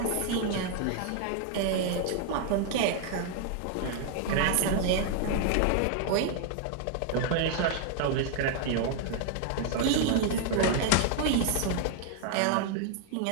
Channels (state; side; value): different; both; correlation 0.00